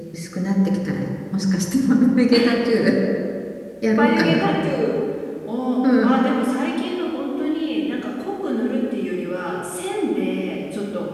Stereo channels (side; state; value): both; identical; correlation 1.00